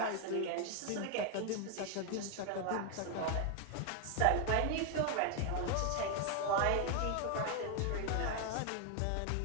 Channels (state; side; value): different; both; correlation 0.01